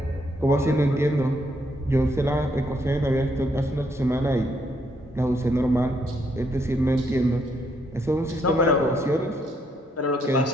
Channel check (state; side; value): normal; both; correlation 0.74